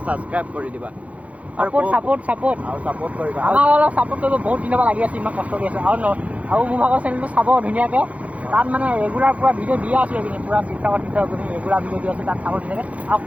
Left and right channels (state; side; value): late; left; 0.067 ms